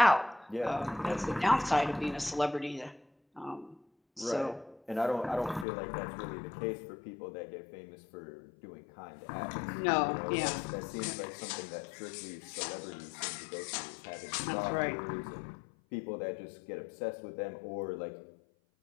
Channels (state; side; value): drops out; right; at 5.7 s